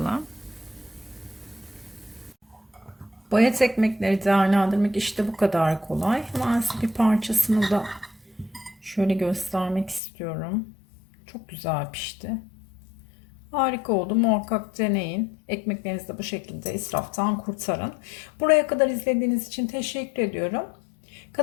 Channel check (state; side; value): drops out; right; at 10.0 s